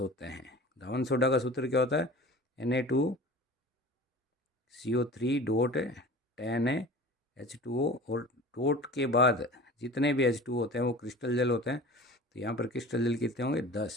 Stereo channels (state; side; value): normal; both; correlation 0.39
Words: हैं। धावन सोडा का सूत्र क्या होता है? Na2CO3 डॉट 10 H2O, और डॉट के बाद जितने भी H2 होते हैं वो क्रिस्टल जल होते हैं। तो यहाँ पर क्रिस्टल जल कितने होंगे?